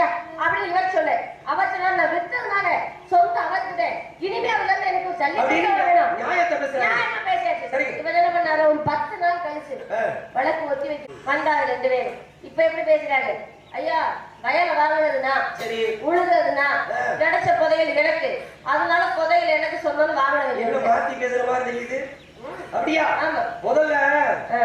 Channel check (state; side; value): identical; both; correlation 1.00